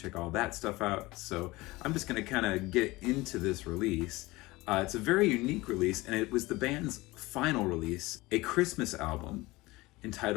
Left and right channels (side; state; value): right; quieter; 20.9 dB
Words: all that stuff out. So I'm just going to kind of get into this release. It's a very unique release, and it was the band's final release, a Christmas album